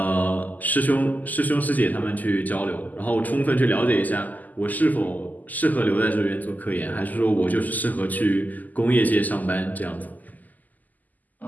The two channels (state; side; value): late; right; 0.082 ms